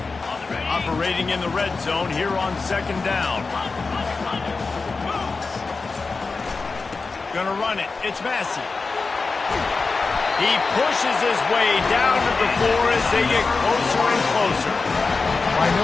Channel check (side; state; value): right; quieter; 4.2 dB